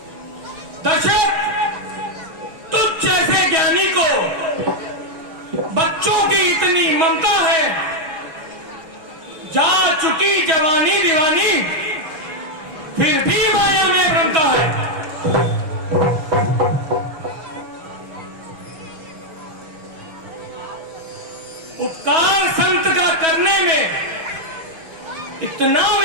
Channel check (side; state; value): left; late; 6.2 ms